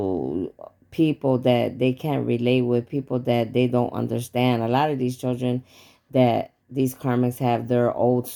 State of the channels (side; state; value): both; identical; correlation 1.00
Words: people that they can't relate with, people that they don't understand. A lot of these children that these karmics have, their old